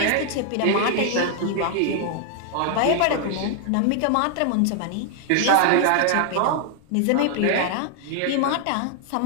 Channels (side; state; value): both; different; correlation 0.00